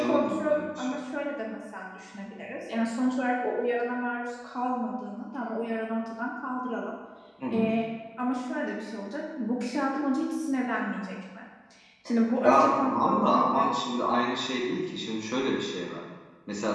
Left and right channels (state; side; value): identical; both; correlation 1.00